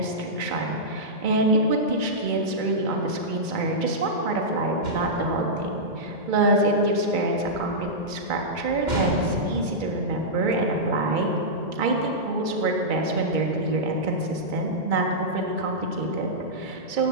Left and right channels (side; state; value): left; late; 2.3 ms